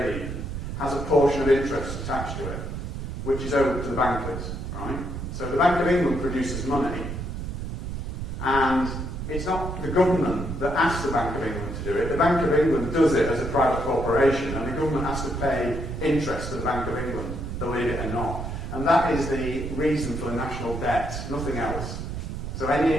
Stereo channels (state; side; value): noise; right; rumble, 5 dB below the sound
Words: even, has a portion of interest attached to it, which is owed to the bankers, right? So the Bank of England produces money, and it's not the government that asks the Bank of England to do it. The Bank of England does it as a private corporation, and the government has to pay interest to the Bank of England, believe it or not. And that is the reason for the national debt, nothing else. So